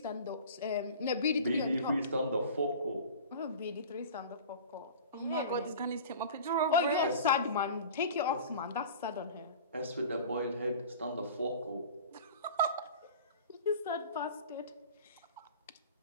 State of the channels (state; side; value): inverted; both; correlation -0.39